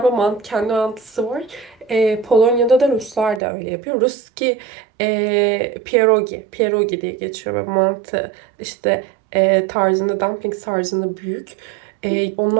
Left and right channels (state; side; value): drops out; left; at 3.4 s